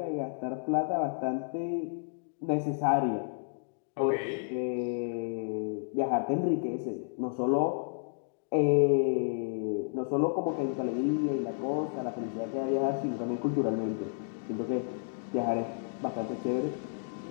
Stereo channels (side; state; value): right; silent; digital silence